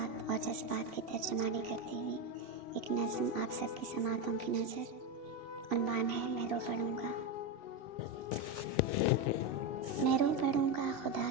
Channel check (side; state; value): left; late; 2.8 ms